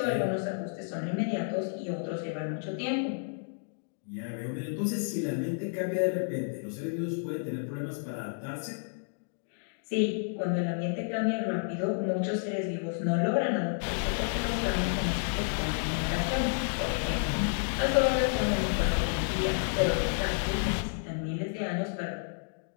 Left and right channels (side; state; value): right; silent; digital silence